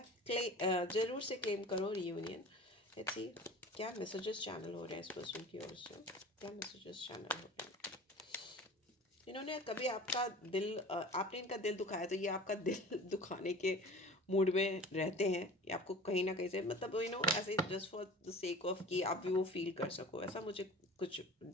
जरूर से क्लेम करो रियूनियन। लेट्स सी क्या मैसेजेस चैनल हो रहे हैं इस पर्सन की ओर से, क्या मैसेजेस चैनल हो रहे हैं। इन्होंने कभी आपका दिल आपने इनका दिल दुखाया, तो ये आपका दिल दुखाने के मूड में रहते हैं, ये आपको कहीं ना कहीं से, मतलब ऐसे just for the sake of कि आप भी वो फील कर सको, ऐसा मुझे कुछ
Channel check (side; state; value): both; normal; correlation 0.41